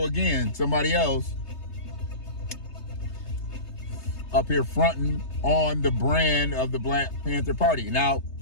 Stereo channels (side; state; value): right; late; 3.3 ms